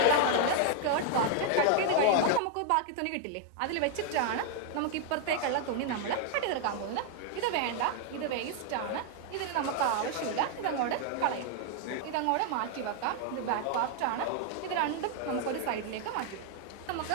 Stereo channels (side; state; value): both; different; correlation 0.00